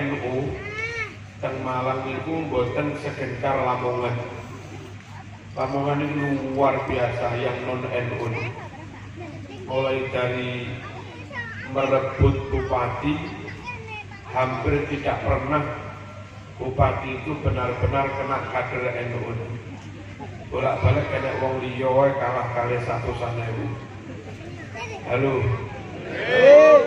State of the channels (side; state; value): both; identical; correlation 1.00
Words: teng Malang niku mboten segencar Lamongan. Lamongan ini luar biasa yang non NU. Mulai dari merebut bupati, hampir tidak pernah bupati itu benar-benar kena kader NU. Bolak-balik kena wong liya wae kalah kali 100.000. Halo.